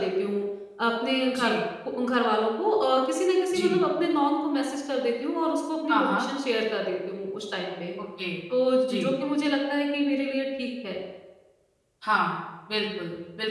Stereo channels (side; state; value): both; identical; correlation 1.00